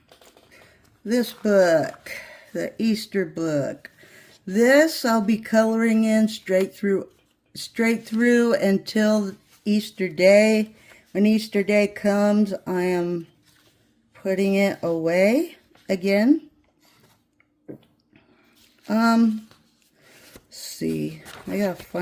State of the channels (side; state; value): both; identical; correlation 1.00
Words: this book, the Easter book. This I'll be coloring in straight through until Easter Day. When Easter Day comes, I am putting it away again. Let's see, I gotta